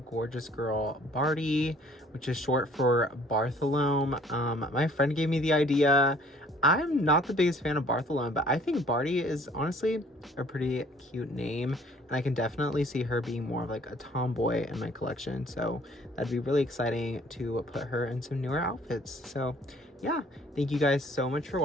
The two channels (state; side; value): normal; both; correlation 0.57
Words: gorgeous girl Barty, which is short for Bartholomew. My friend gave me the idea. I'm not the biggest fan of Bartholomew, but I think Barty is honestly a pretty cute name, and I can definitely see her being more of like a tomboy in my collection. So that'd be really exciting to put her in some newer outfits. So yeah, thank you guys so much for